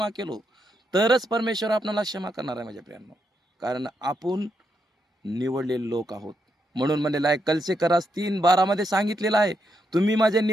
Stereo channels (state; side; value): normal; both; correlation 0.81